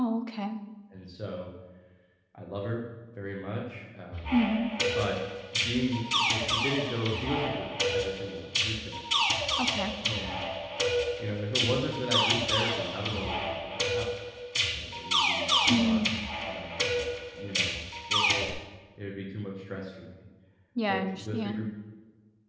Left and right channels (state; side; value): identical; both; correlation 1.00